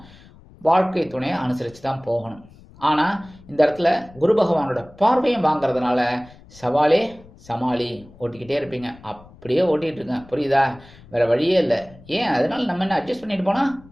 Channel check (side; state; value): left; noise; rumble, 23 dB below the sound